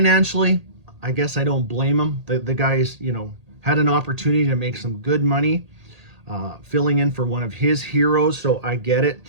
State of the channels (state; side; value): late; left; 1.8 ms